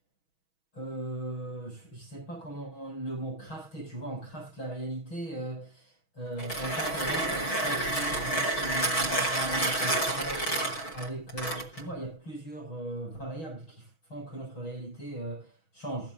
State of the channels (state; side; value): late; right; 6.2 ms